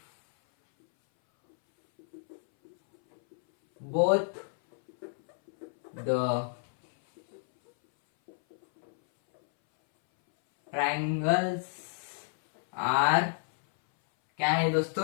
both the triangles are, क्या है दोस्तों,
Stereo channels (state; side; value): silent; right; 58 dB below the other